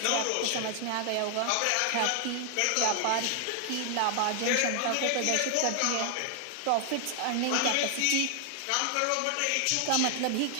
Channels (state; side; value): different; both; correlation 0.00